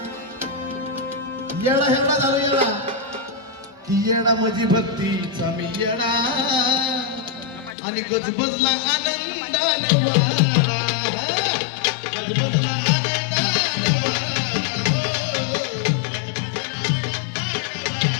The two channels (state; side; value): drops out; right; at 7.8 s